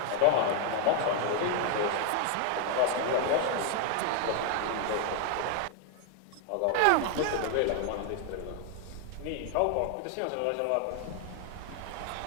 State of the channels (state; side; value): different; both; correlation 0.00